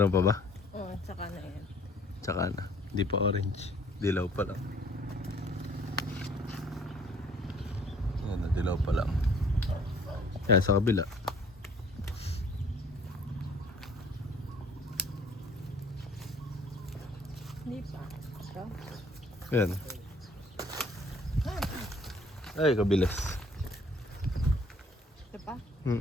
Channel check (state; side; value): normal; both; correlation 0.57